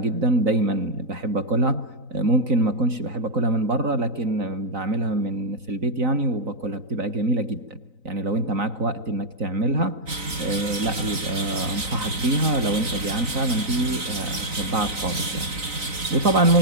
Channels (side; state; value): left; late; 3.9 ms